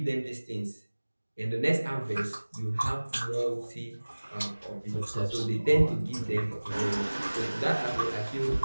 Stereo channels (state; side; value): inverted; both; correlation -1.00